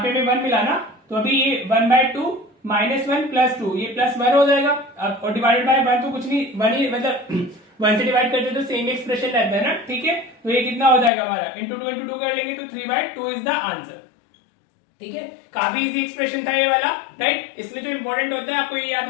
पे हमें 1 मिला ना, तो अभी ये 1/2 -1 + 2 ये +1 हो जाएगा। अब और डिवाइडेड बाय 1 तो कुछ नहीं, 1 ही मतलब 1 से डिवाइड करते तो सेम एक्सप्रेशन रहता है ना। ठीक है, तो ये कितना हो जाएगा हमारा इंटू 2 इंटू 2 कर लेंगे तो 3/2 इज द आंसर। ठीक है, काफी इजी एक्सप्रेशन था ये वाला, राइट। इसमें जो इंपॉर्टेंट होता है आपको ये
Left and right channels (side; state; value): right; drops out; at 11.1 s